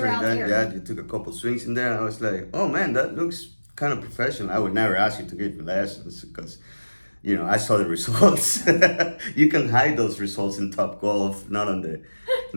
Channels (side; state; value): both; inverted; correlation -1.00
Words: that, there. you took a couple swings in there, and I was like, oh man, that looks kind of professional. I would never ask you to give me lessons because... You know, I saw the results. You can hide those results in Top Golf, not